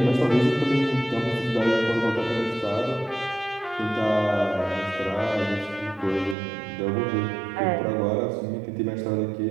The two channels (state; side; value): drops out; left; at 6.4 s